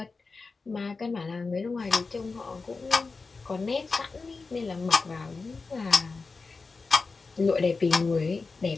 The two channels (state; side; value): quieter; right; 4.2 dB